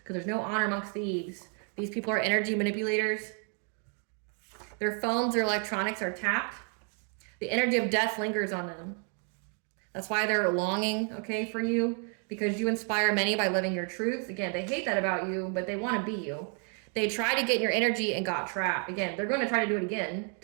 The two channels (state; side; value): quieter; left; 39.5 dB